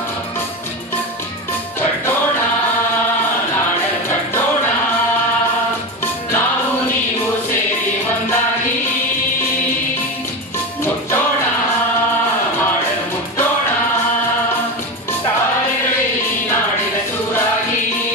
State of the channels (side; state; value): both; normal; correlation 0.21